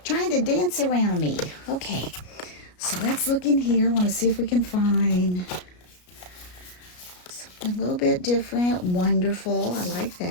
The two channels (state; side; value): late; right; 33 ms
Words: trying to dance around me. Okay, so let's look in here. I want to see if we can find something a little bit different. Wonderful. I like